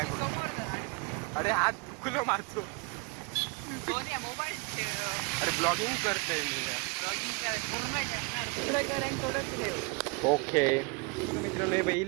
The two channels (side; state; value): left; quieter; 29.6 dB